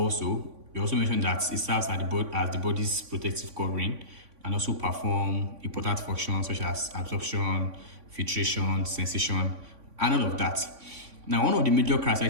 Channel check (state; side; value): late; left; 3.5 ms